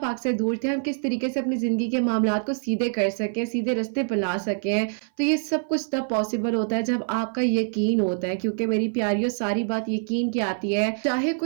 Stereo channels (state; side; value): silent; left; 58 dB below the other